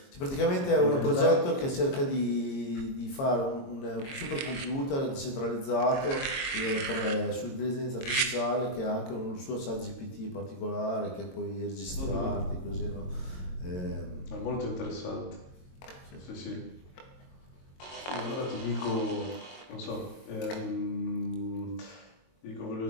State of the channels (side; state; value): right; late; 22 ms